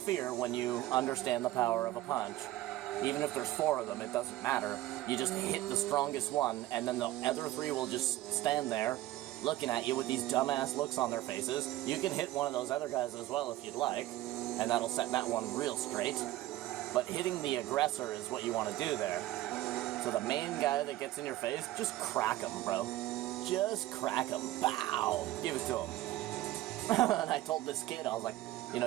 when you understand the power of a punch. Even if there's 4 of them, it doesn't matter. You just hit the strongest one, and then the other 3 will just stand there, looking at you with these dumbass looks on their faces. You can hit one of those other guys as well if you'd like, and that'll set that one real straight. But hitting the aggressor is what you want to do there. So the main guy that gets in your face, just crack him, bro. Just crack him. Bow! Give it to him. And I told this kid, I was like, you know,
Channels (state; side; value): quieter; left; 15.9 dB